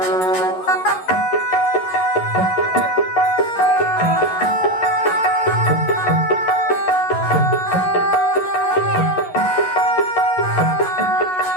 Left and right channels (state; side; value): late; right; 11 ms